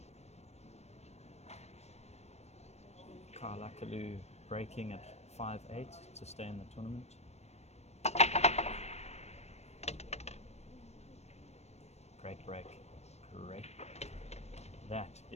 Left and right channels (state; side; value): late; right; 0.31 ms